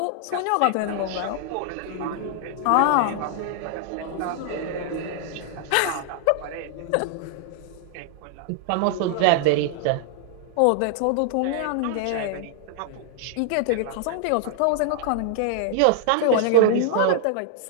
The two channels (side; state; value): both; different; correlation -0.01